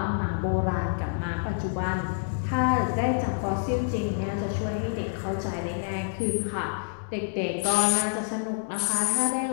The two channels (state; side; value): silent; right; digital silence